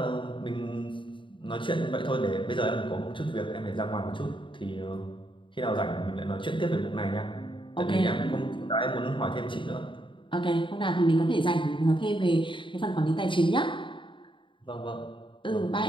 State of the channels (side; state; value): right; late; 0.24 ms